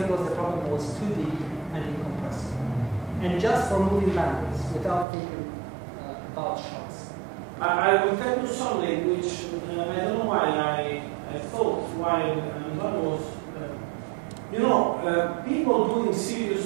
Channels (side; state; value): left; drops out; at 5.1 s